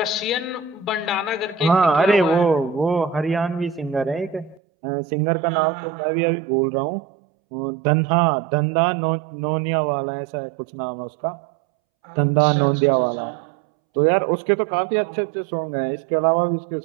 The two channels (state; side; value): drops out; left; at 4.6 s